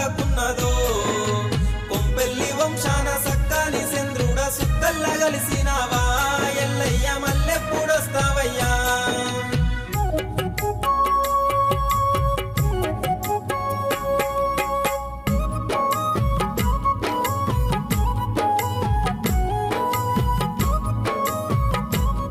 కొంపెల్లి వంశాన సక్కాని చంద్రుడ సుక్కల్ల కలిసినావా ఎల్లయ్య మల్లెప్పుడొస్తావయ్యా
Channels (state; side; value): identical; both; correlation 1.00